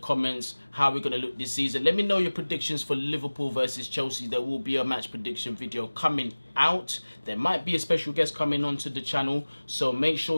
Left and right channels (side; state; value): both; inverted; correlation -1.00